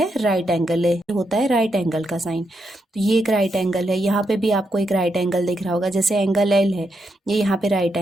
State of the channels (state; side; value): normal; both; correlation 0.82